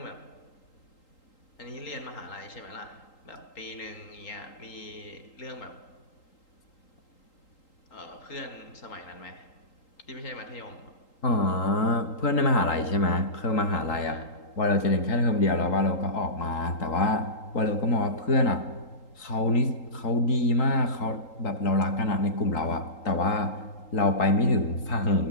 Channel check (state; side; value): late; right; 3.8 ms